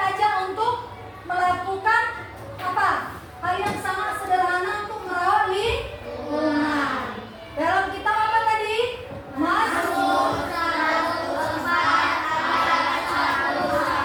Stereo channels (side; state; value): both; identical; correlation 1.00